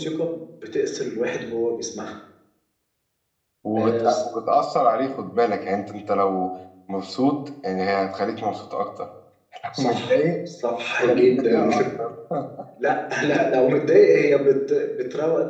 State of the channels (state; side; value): identical; both; correlation 1.00